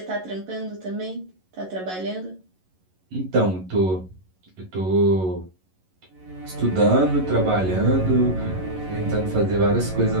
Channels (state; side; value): late; left; 11 ms